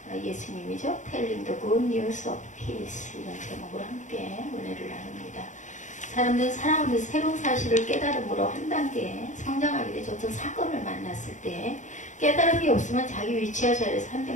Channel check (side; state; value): right; late; 0.36 ms